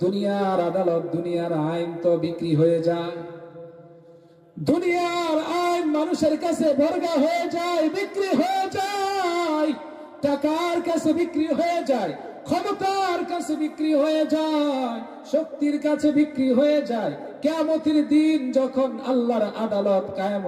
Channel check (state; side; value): identical; both; correlation 1.00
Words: দুনিয়ার আদালত, দুনিয়ার আইন তো বিক্রি হয়ে যায়। দুনিয়ার আইন মানুষের কাছে বর্গা হয়ে যায়, বিক্রি হয়ে যায়। টাকার কাছে বিক্রি হয়ে যায়, ক্ষমতার কাছে বিক্রি হয়ে যায়, শক্তির কাছে বিক্রি হয়ে যায়। কিয়ামতের দিন যখন আল্লাহর আদালত কায়েম